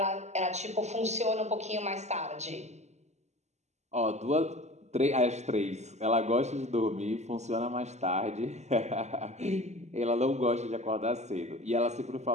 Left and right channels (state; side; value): late; left; 0.33 ms